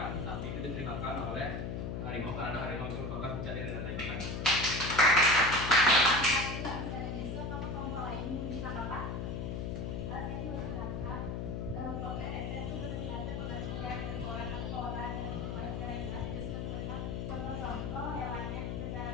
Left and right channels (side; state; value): left; noise; hum, 3 dB below the sound